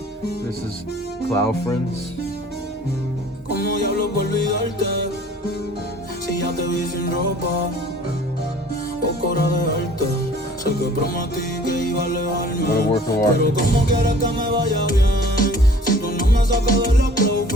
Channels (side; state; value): both; normal; correlation 0.50